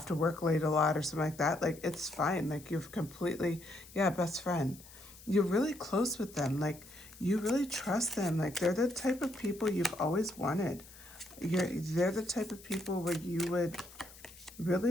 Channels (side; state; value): left; noise; hiss, 20 dB below the sound